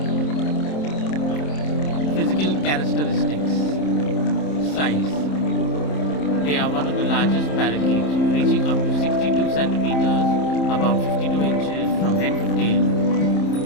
Physical characteristics: size: they are one of the largest parakeets, reaching up to 62 centimeters, about 52 inches from head to tail.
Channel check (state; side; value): late; right; 27 ms